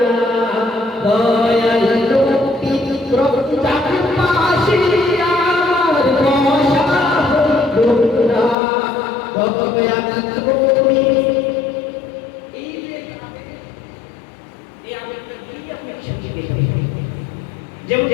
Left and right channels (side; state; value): right; drops out; at 8.6 s